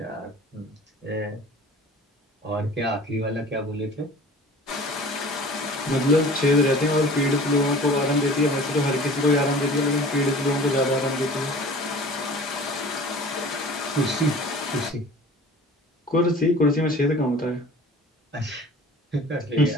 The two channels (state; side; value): normal; both; correlation 0.43